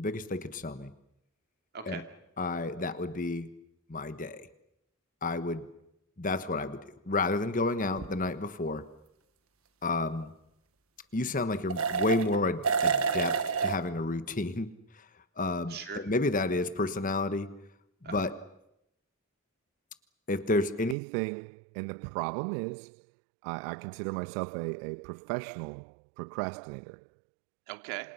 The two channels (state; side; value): drops out; left; at 21.0 s